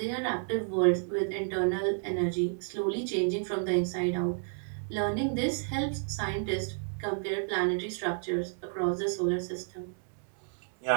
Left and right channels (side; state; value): left; silent; digital silence